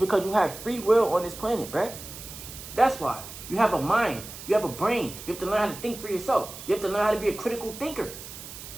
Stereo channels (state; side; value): noise; right; hiss, 13 dB below the sound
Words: you have free will on this planet, bruh. That's why. You have a mind. You have a brain. You have to learn how to think for yourself. You have to learn how to be a critical thinker.